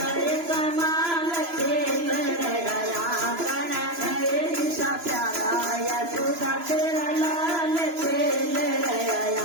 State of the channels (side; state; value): left; late; 3.0 ms